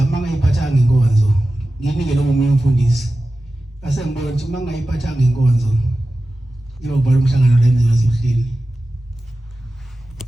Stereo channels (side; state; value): both; normal; correlation 0.94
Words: mangayiphathanga inkonzo nginike lo munye umfundisi. Ngase ngibona ukuthi mangayiphathanga inkonzo yokuba umhlangano la enziwa zihlini.